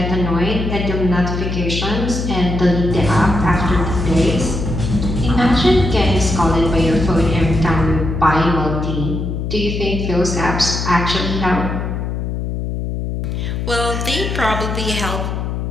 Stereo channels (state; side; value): noise; left; hum, 3 dB below the sound